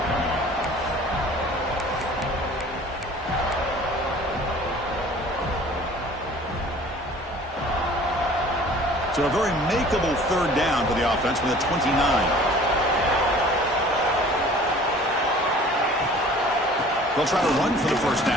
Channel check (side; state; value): both; normal; correlation 0.48